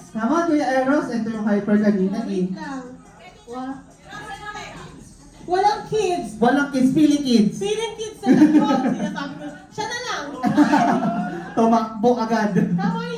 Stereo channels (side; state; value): both; identical; correlation 1.00